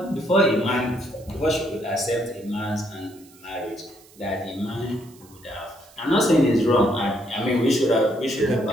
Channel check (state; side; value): noise; right; hiss, 26 dB below the sound